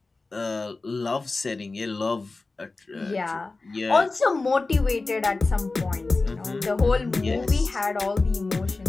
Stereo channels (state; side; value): quieter; right; 3.5 dB